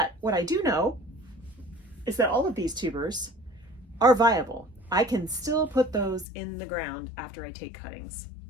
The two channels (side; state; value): right; drops out; at 6.2 s